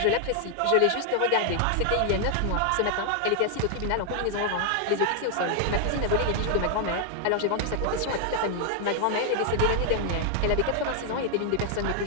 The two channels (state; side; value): different; both; correlation 0.00